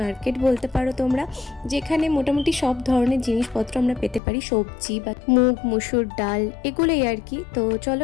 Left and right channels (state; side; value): drops out; right; at 4.2 s